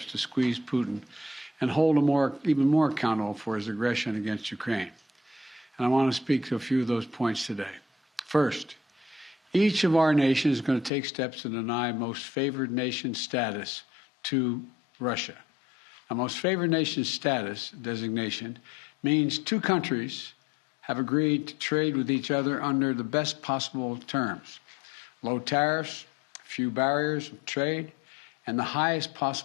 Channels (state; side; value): drops out; right; at 10.9 s